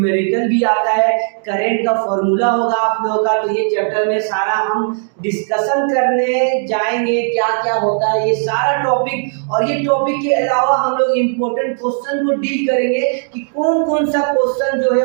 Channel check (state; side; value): silent; left; 56 dB below the other